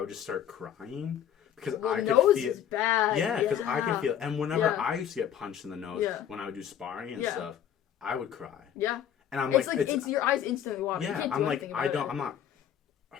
just start crying because I could nose feel. Is bad. Yeah, because I could feel. And whenever I used to get punched in the nose when I would do sparring and stuff, I would cry. Yeah. And I'm it's your eyes instantly water. Yeah, I'm like, I'm not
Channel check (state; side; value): quieter; right; 9.6 dB